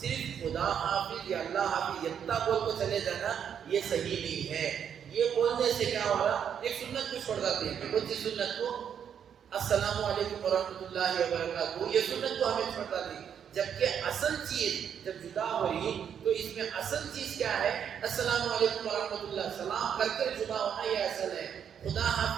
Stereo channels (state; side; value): quieter; left; 8.3 dB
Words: خدا حافظ یا اللہ حافظ اتنا بول کو چلے جانا یہ صحیح نہیں ہے۔ یہ بولنے سے کیا ہو رہا، ایک سنت کو چھوڑ جاتے ہیں، کون سی سنت کو؟ السلام علیکم ورحمۃ اللہ وبرکاتہ، یہ سنت کو ہمیں چھوڑ جاتے ہیں۔ جبکہ اصل چیز جب جدا ہو رہی تو اس میں اصل چیز کیا ہے؟ السلام علیکم ورحمۃ اللہ، سلام کر کے جدا ہونا یہ اصل ہے۔ خدا